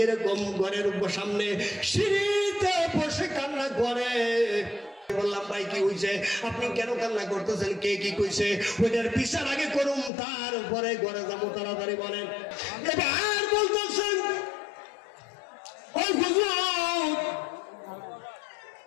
এরকম ঘরের সামনে সিঁড়িতে বসে কান্না করে। বললাম ভাই কি হয়েছে, আপনি কেন কান্না করতেছেন, কে কি কইছে? ওইটার বিচার আগে করুন, তারপরে ঘরে যাবো, তাড়াতাড়ি বলেন। এবার বলতেছেন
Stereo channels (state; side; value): drops out; right; at 10.1 s